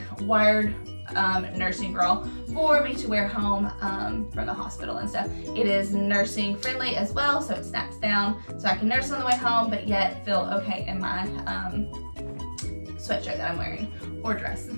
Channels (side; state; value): both; inverted; correlation -1.00